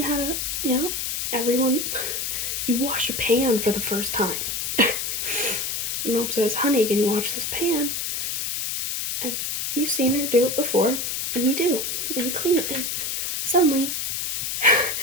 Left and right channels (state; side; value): noise; left; hiss, 2 dB below the sound